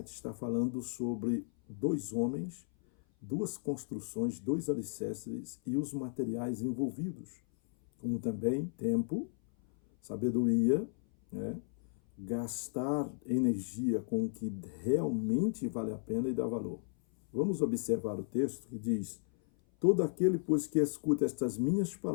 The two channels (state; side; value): silent; right; 55 dB below the other